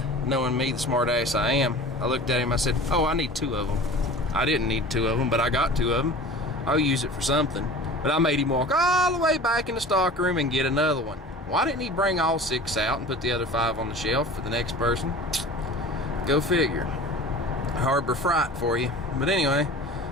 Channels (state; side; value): normal; both; correlation 0.39